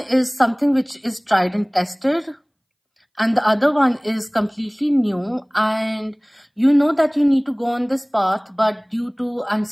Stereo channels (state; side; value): identical; both; correlation 1.00